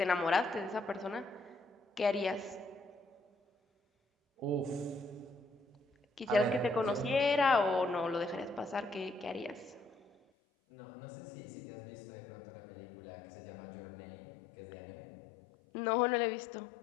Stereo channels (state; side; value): drops out; right; at 10.2 s